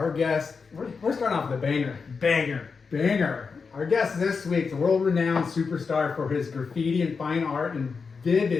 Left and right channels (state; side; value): quieter; right; 5.2 dB